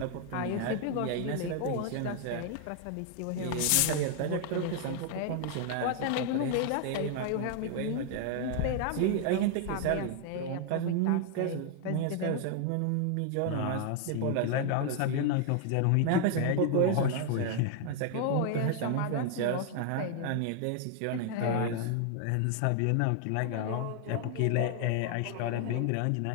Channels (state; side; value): different; both; correlation 0.00